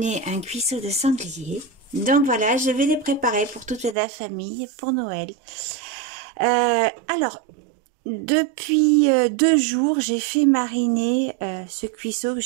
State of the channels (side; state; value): left; drops out; at 4.0 s